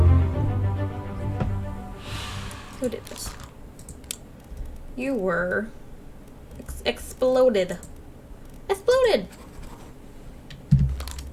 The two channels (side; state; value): both; identical; correlation 1.00